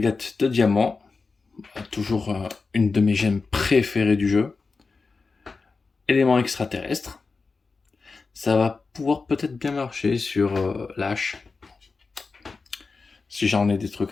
de diamants. Toujours une de mes gemmes préférées du jeu. Élément extraterrestre. Ça va pouvoir peut-être bien marcher sur l'H. Si j'en ai des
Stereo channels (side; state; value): right; quieter; 4.3 dB